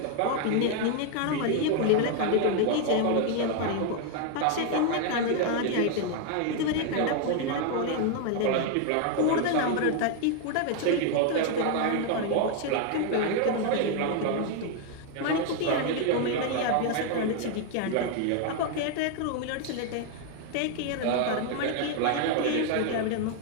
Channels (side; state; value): both; different; correlation 0.01